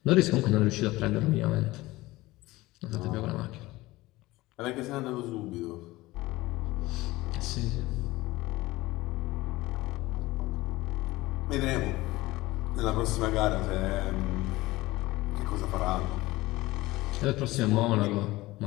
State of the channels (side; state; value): right; quieter; 19.2 dB